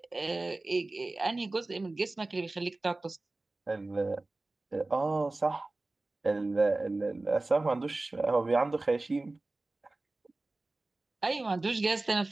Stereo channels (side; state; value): left; quieter; 3.0 dB